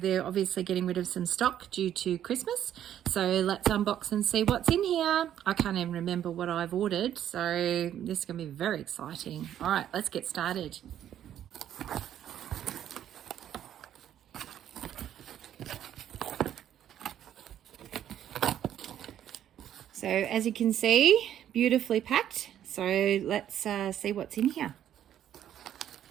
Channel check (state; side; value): quieter; left; 10.8 dB